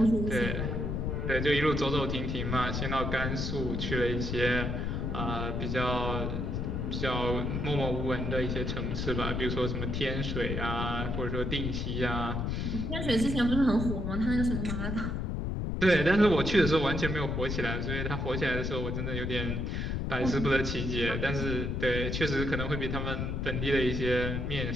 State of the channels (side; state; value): left; noise; rumble, 1 dB below the sound